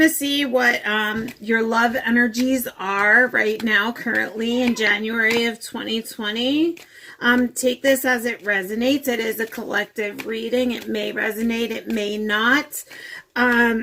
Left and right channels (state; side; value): identical; both; correlation 1.00